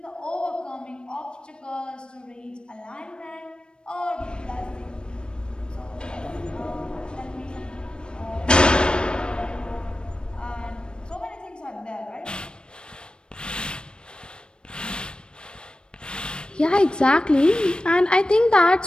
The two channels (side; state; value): right; late; 0.053 ms